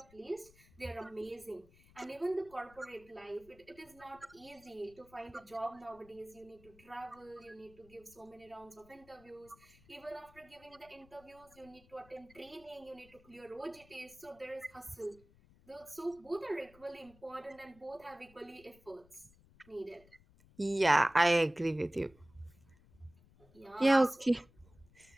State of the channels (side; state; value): left; noise; rumble, 26 dB below the sound